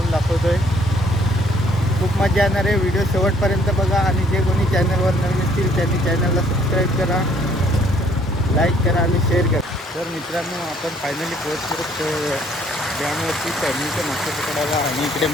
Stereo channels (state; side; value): normal; both; correlation 0.63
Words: दाखवतो आहे. खूप मजा येणार आहे, व्हिडिओ शेवटपर्यंत बघा. आणि जे कोणी चॅनलवर नवीन असतील त्यांनी चॅनलला सबस्क्राईब करा, लाईक करा आणि शेअर करा. तर मित्रांनो, आपण फायनली पोहोचतो डॅमवरती चढणीचे मासे पकडायला. आणि इकडे